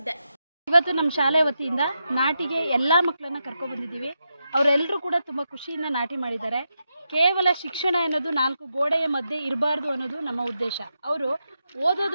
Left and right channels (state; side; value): inverted; both; correlation -0.86